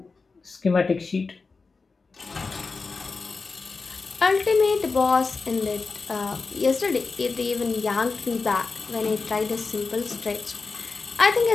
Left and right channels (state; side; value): quieter; right; 4.3 dB